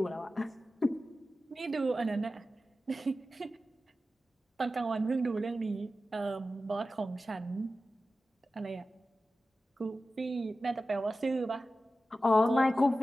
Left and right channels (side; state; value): both; normal; correlation 0.94